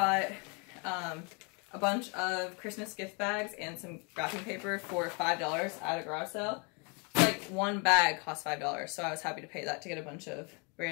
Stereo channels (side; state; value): right; quieter; 33.3 dB